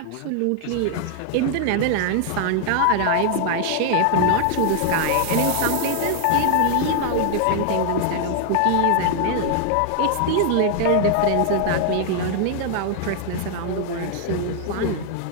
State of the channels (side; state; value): both; different; correlation 0.00